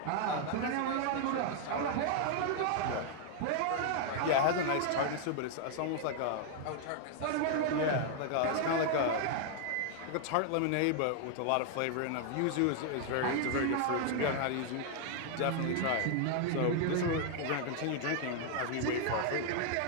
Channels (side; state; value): both; different; correlation 0.00